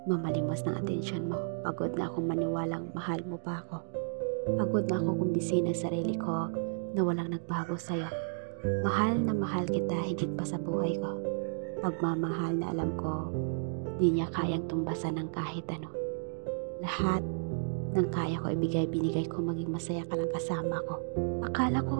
mamalimos ng atensyon mo. Pagod na akong maniwalang mahal mo pa ako. Pagod na ako kumbisin ang sarili ko na walang nagbago sa'yo. Mahal na mahal kita higit pa sa buhay ko. Pagmamahal na alam ko di niya kayang tumbasan ng kahit ano. Lahat ng kaya ko binigay ko maging masaya ka lang kasama ko. Akala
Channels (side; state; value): left; silent; digital silence